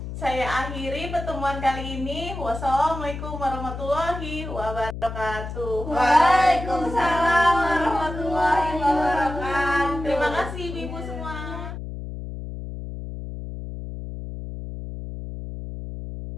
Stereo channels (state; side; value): noise; left; hum, 8 dB below the sound